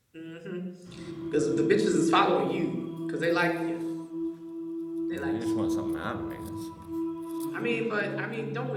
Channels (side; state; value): both; identical; correlation 1.00